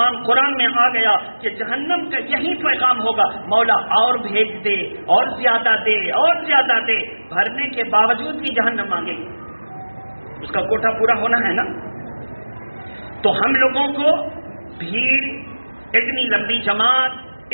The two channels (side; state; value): both; inverted; correlation -1.00